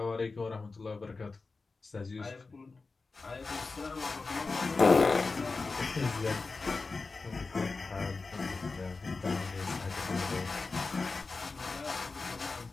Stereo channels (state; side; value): quieter; right; 4.0 dB